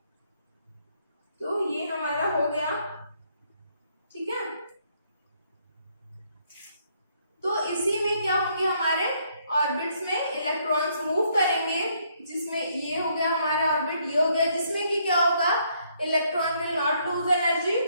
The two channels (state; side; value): inverted; both; correlation -0.70